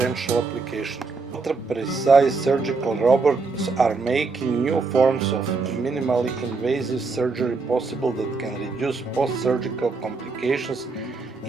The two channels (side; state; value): left; quieter; 4.2 dB